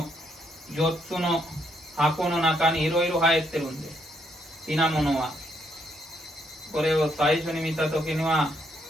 4つの箱の中にいろいろ入ってるんです。品物はこれを最初に見た時には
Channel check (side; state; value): both; normal; correlation 0.74